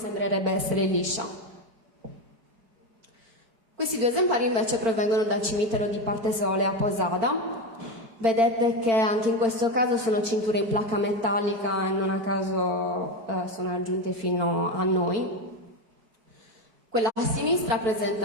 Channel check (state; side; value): late; left; 4.5 ms